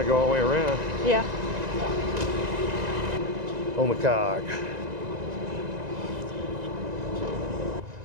to go all the way around Yeah. on the cog.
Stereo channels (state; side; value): late; left; 1.9 ms